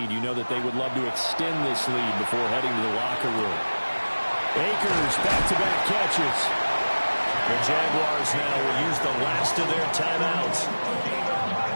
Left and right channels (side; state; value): both; inverted; correlation -1.00